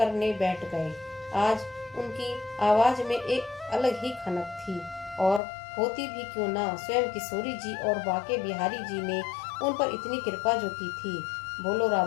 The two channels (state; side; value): drops out; right; at 5.4 s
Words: बैठ गए। आज उनकी आवाज में एक अलग ही खनक थी, और होती भी क्यों ना, स्वयं किशोरी जी और बाके बिहारी जी ने उन पर इतनी कृपा जो की थी। बोलो